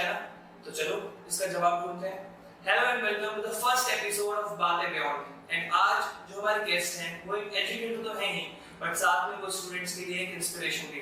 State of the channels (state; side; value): identical; both; correlation 1.00